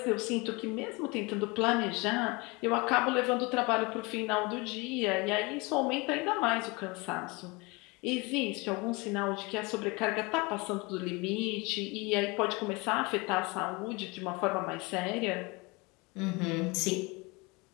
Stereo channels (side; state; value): right; quieter; 26.4 dB